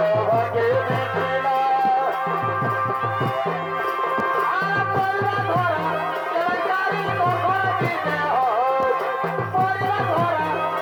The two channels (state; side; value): identical; both; correlation 1.00